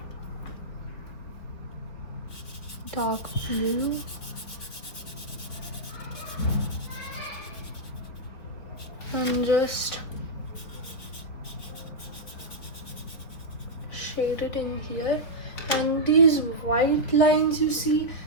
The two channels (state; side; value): late; right; 4.2 ms